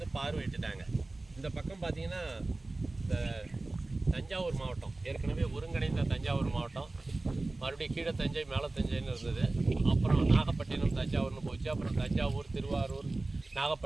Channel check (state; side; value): quieter; left; 3.1 dB